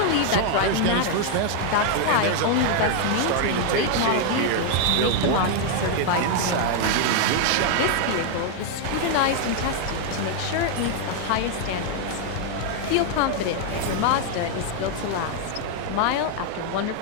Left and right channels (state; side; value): different; both; correlation 0.00